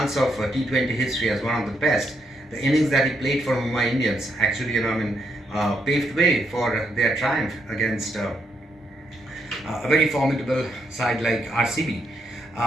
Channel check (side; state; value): both; normal; correlation 0.78